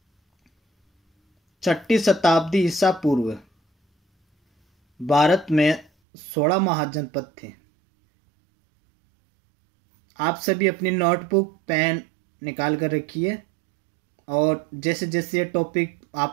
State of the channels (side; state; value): left; drops out; at 5.9 s